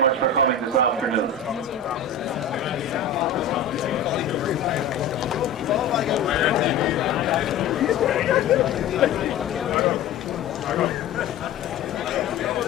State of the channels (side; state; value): right; quieter; 5.5 dB